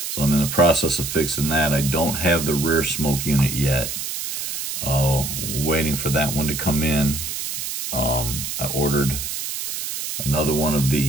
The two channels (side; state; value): right; noise; hiss, 5 dB below the sound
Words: so I'm in the process of fixing that. I don't have the rear smoke unit yet. Waiting for that one to come in. I ordered another one of